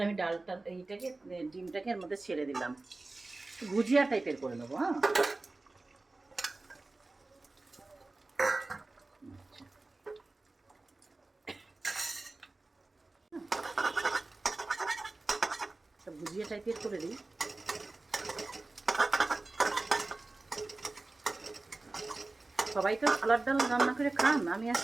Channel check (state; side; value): quieter; left; 3.2 dB